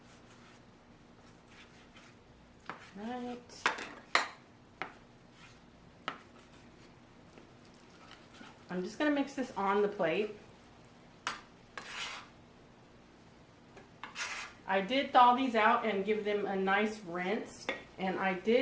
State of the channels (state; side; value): identical; both; correlation 1.00